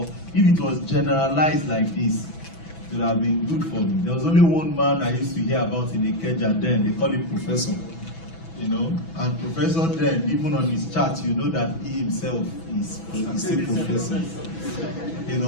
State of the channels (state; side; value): late; right; 6.1 ms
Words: if it was generalized like this, it would have been good for me. There was only one man I used to hear about in Ikeja then, they call him Professor. You know, and Professor then, even on his chart, you know that he himself is a professor. You